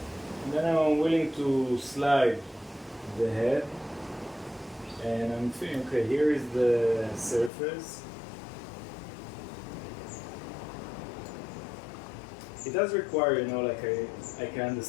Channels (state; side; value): drops out; right; at 7.5 s